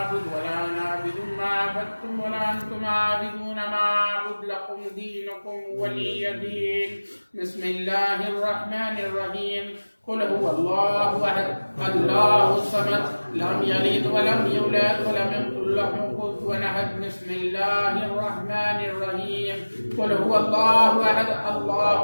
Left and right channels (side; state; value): both; inverted; correlation -1.00